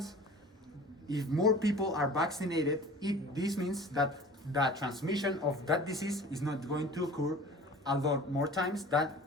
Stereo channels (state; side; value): normal; both; correlation 0.42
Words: if more people are vaccinated, this means that the transmission of that disease is not going to occur a lot more times than